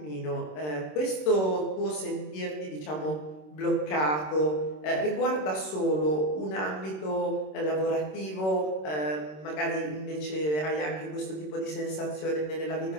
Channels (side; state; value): right; late; 26 ms